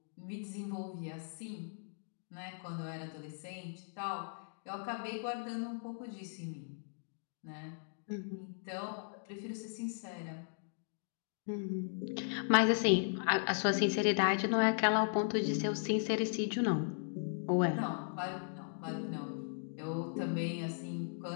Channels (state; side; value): silent; right; digital silence